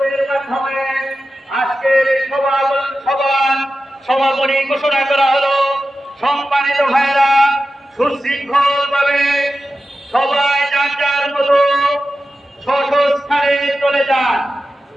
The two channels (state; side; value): normal; both; correlation 0.93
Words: সমাপনী ঘোষণা করা হলো। সম্মানিত ভাইরা, সুশৃঙ্খল ভাবে সবাই যার যার মতো স্থানে চলে যান।